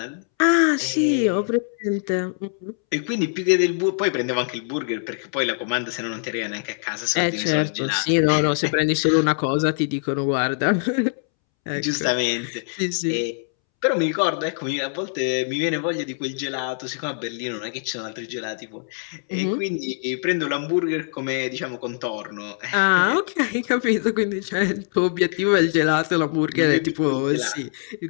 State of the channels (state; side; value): silent; right; 63 dB below the other